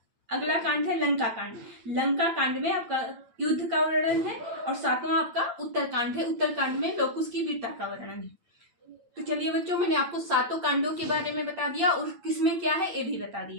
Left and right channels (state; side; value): late; left; 8.9 ms